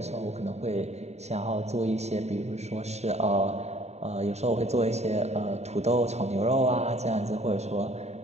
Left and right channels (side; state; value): left; late; 0.32 ms